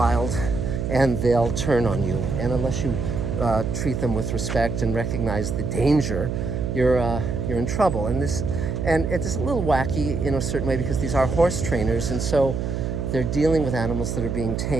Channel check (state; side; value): noise; right; hum, 2 dB below the sound